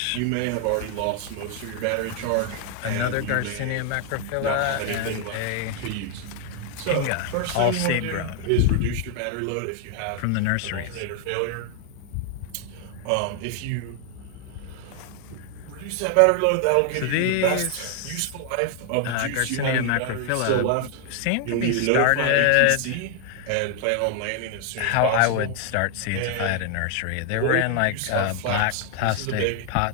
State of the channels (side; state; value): both; different; correlation 0.00